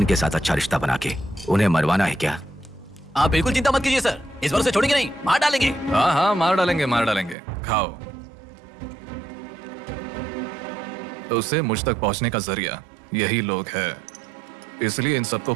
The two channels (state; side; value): drops out; left; at 7.4 s